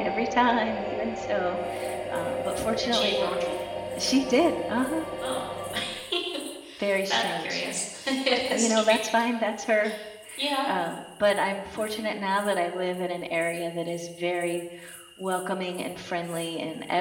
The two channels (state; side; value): identical; both; correlation 1.00